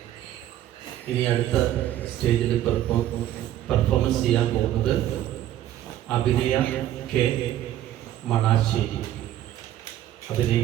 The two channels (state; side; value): quieter; left; 12.6 dB